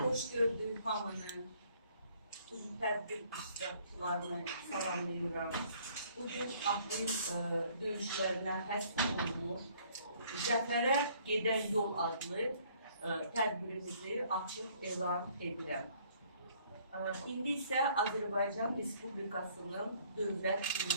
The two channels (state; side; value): inverted; both; correlation -0.61